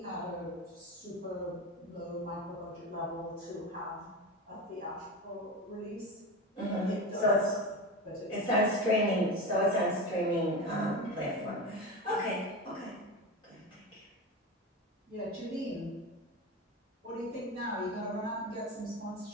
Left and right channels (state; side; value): normal; both; correlation 0.23